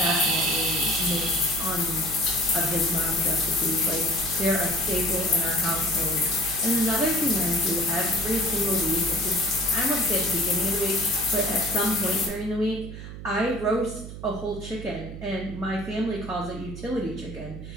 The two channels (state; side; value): noise; right; hum, 11 dB below the sound